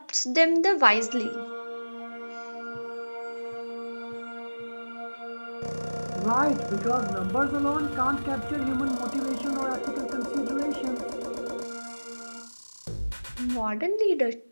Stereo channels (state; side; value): inverted; both; correlation -1.00